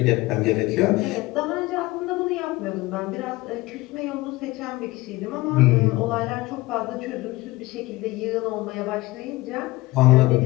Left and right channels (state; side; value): quieter; right; 20.1 dB